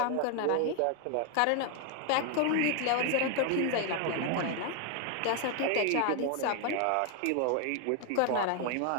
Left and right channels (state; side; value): different; both; correlation 0.00